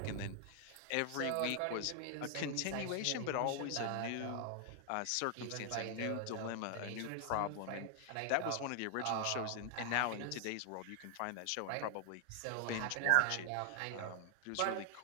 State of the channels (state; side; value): different; both; correlation 0.00